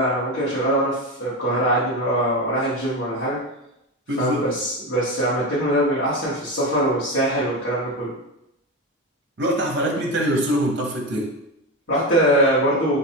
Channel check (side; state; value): both; normal; correlation 0.18